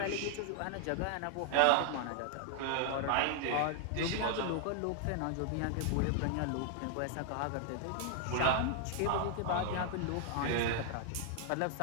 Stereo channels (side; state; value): both; different; correlation 0.00